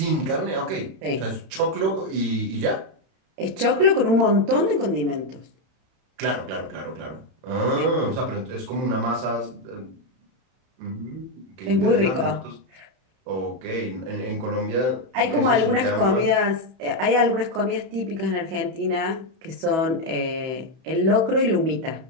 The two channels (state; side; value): late; left; 31 ms